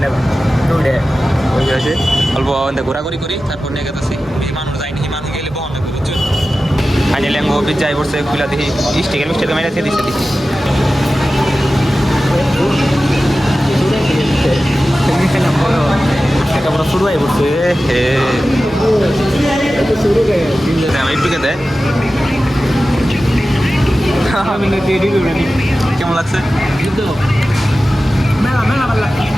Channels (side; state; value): both; normal; correlation 0.94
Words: যাবো ওই হয়েছে অল্প ঘোরাঘুরি করি তারপর নিয়ে গেতেছি মানুষ যায়নি মানুষ গেলে বহন লাগবে বুঝছো ফাইনালি আমি অফিস যাই পড়ছে খুলে দেখি স্টিকের মিস্টেকে মেরে দিচ্ছে দেখি পুরো শুরু হয়ে পড়ছে একটুকে দেয় কেমন লাগছে